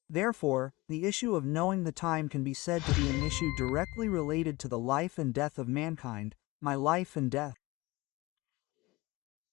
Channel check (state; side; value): quieter; right; 21.9 dB